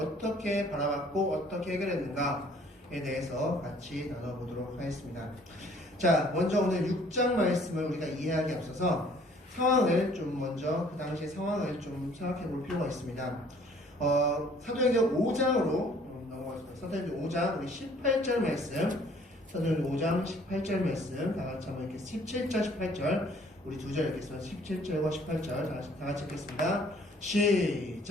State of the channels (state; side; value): normal; both; correlation 0.57